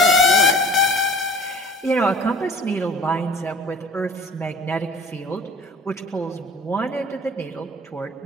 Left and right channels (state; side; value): normal; both; correlation 0.44